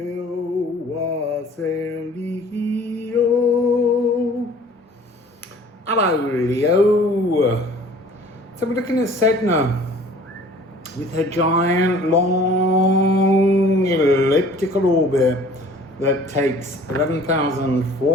Wassail Leo. Hello, Leo. So we're looking at Sedna with her giant, long, elliptical orbit that takes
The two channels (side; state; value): both; normal; correlation 0.50